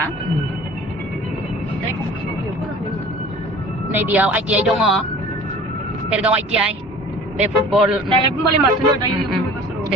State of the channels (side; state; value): both; normal; correlation 0.44